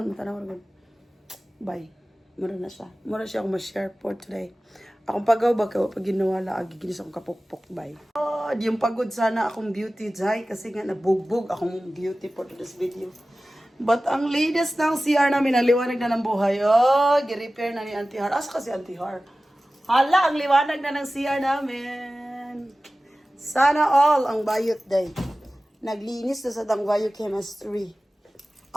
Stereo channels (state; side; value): normal; both; correlation 0.96